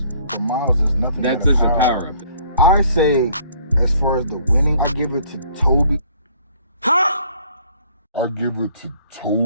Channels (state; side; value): inverted; both; correlation -0.60